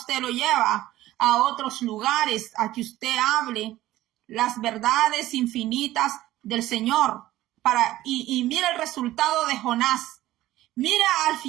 lo lleva a otros lugares, a que usted hable las verdades infinitas del Señor. Y mira el resultado de Jonás. Mira al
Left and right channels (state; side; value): quieter; left; 15.3 dB